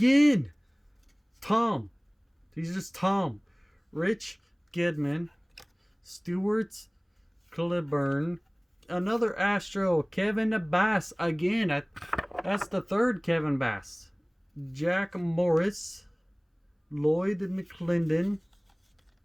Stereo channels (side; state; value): both; identical; correlation 1.00